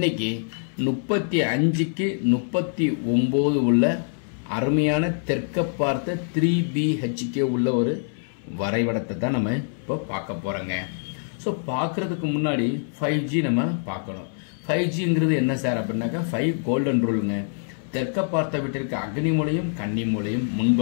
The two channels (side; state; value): right; silent; 62 dB below the other